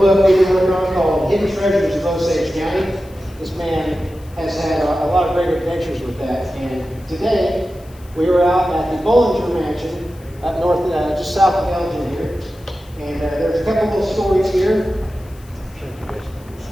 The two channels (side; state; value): left; noise; hiss, 27 dB below the sound